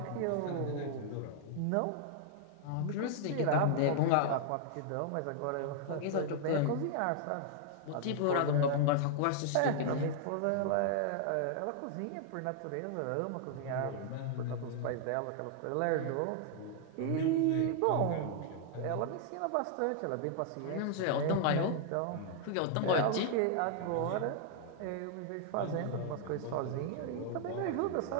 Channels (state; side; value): different; both; correlation -0.01